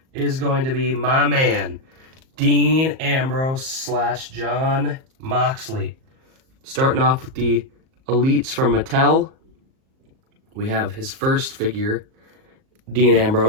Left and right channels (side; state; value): left; late; 38 ms